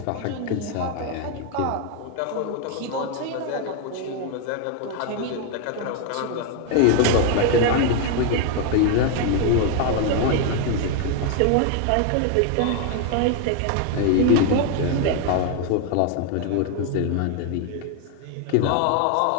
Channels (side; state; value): both; different; correlation 0.01